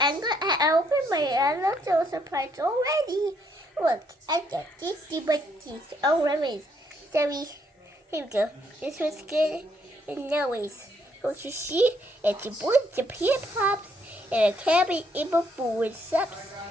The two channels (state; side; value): normal; both; correlation 0.71